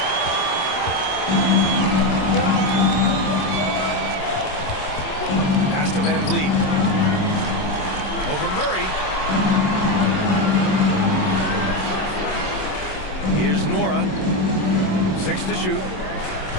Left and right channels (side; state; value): right; late; 27 ms